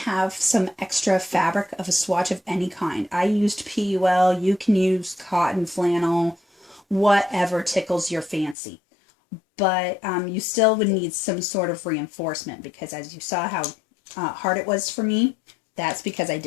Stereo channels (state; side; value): drops out; right; at 8.6 s